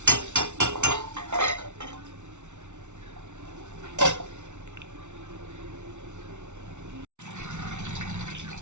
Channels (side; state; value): left; late; 0.83 ms